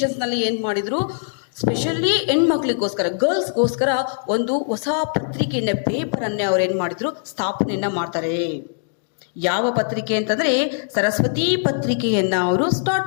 ನಲ್ಲಿ ಏನ್ ಮಾಡಿದ್ರು, ಸ್ಪೆಷಲಿ ಹೆಣ್ಮಕ್ಳಿಗೋಸ್ಕರ, ಗರ್ಲ್ಸ್ಗೋಸ್ಕರ ಒಂದು ಹೊಸ ಪತ್ರಿಕೆಯನ್ನ, ಪೇಪರ್ ಅನ್ನೇ ಅವ್ರು ಏನ್ ಮಾಡಿದ್ರು, ಸ್ಥಾಪನೆಯನ್ನ ಮಾಡ್ತಾರೆ. ಯಾವ ಪತ್ರಿಕೆ ಅಂತಂದ್ರೆ ಸರಸ್ವತಿ ಪತ್ರಿಕೆಯನ್ನ ಅವರು ಸ್ಟಾರ್ಟ್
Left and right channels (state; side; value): silent; right; digital silence